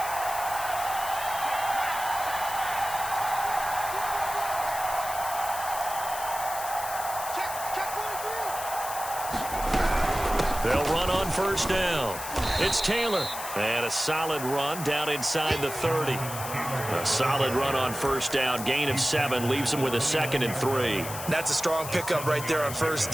They'll run on first down. It's Taylor. And a solid run down inside the 30. A solid run on first down. Gain of 7 leaves him with a 2nd and 3. That's a strong pickup right there on first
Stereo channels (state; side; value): noise; left; hiss, 9 dB below the sound